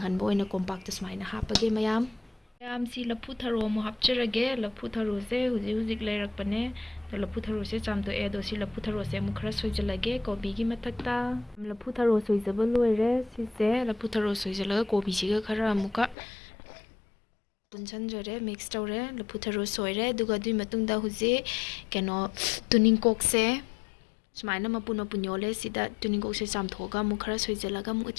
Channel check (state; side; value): drops out; right; at 16.2 s